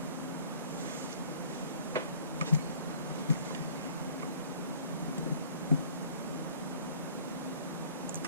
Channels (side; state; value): both; inverted; correlation -0.54